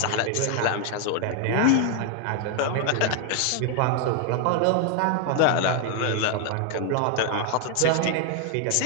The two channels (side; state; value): both; different; correlation 0.00